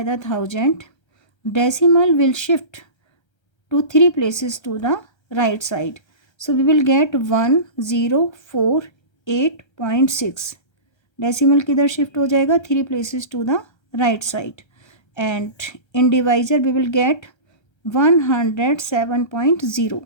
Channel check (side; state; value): right; late; 1.3 ms